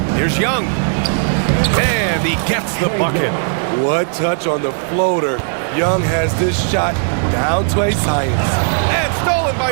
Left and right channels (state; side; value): silent; left; 66 dB below the other